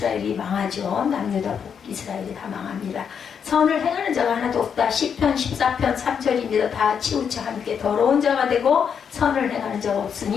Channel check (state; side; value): quieter; right; 7.2 dB